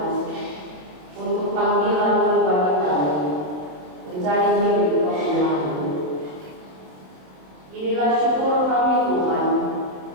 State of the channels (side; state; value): left; late; 27 ms